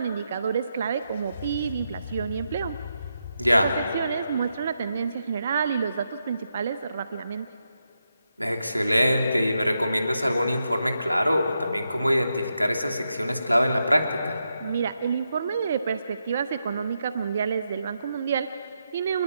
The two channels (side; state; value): both; inverted; correlation -0.84